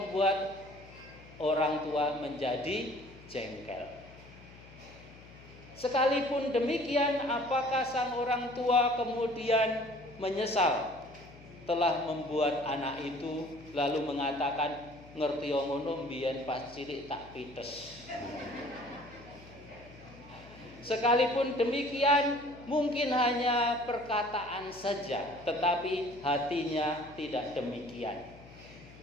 orang tua menjadi jengkel. Sekalipun demikian, apakah sang orang tua kemudian menyesal telah membuat anak itu lalu mengatakan, ngerti ngono mbiyen pas cilik tak pites. Sekalipun demikian, mungkin hanya perkataan saja, tetapi hatinya tidak demikian.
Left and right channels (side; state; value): left; noise; hum, 20 dB below the sound